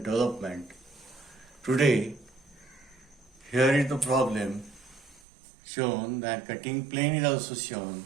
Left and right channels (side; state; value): left; drops out; at 5.2 s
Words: Today, here is the problem shown that cutting plane is also shown.